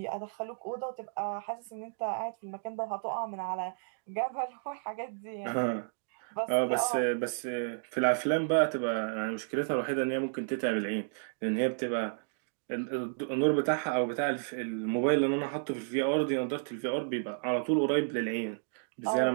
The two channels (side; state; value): left; silent; digital silence